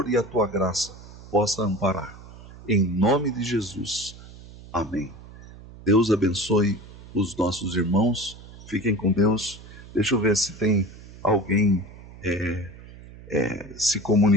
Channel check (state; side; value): noise; right; hum, 18 dB below the sound